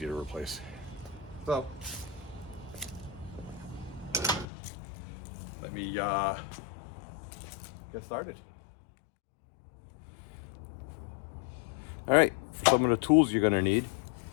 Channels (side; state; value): right; drops out; at 4.5 s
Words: to replace. So, let me get started. All right, for some of the tools you're gonna need.